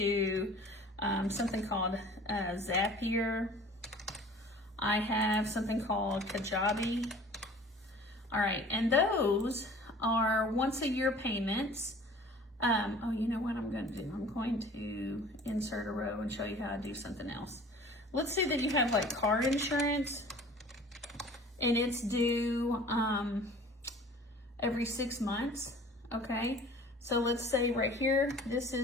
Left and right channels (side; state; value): both; normal; correlation 0.46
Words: something called Zapier. I have something called Kajabi. All right, and those are once a year payments. Oh, you know what I'm going to do? I'm going to insert a row and show you how I do something else. Let's say that you have like car insurance and it's due every 6 months, okay? So let's say right here, this